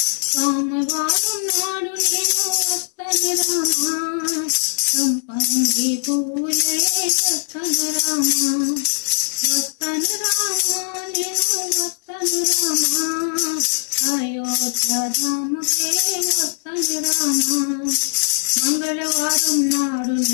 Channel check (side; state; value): right; silent; digital silence